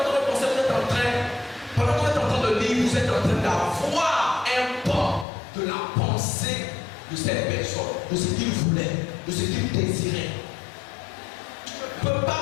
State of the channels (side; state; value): right; drops out; at 5.2 s